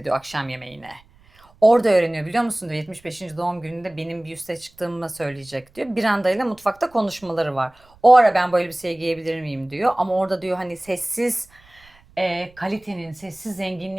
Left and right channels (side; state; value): right; noise; rumble, 29 dB below the sound